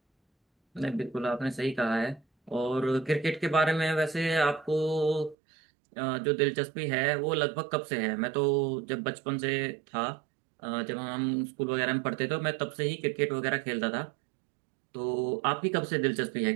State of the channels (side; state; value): left; drops out; at 5.4 s